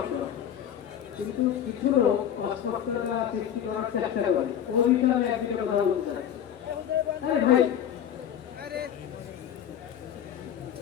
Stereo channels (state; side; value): quieter; right; 9.6 dB